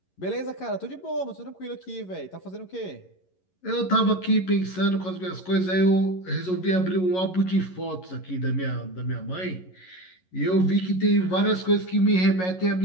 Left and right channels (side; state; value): right; late; 11 ms